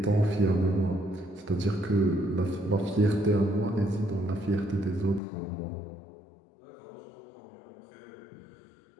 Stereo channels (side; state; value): right; drops out; at 5.2 s